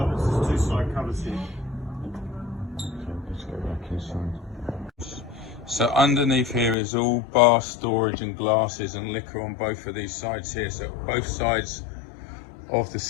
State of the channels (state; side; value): drops out; right; at 6.8 s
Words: There's 2 side covers here. So let's go back inside. So underneath here is all bar storage and glasses and liquor on both of these sides here. So both sides of the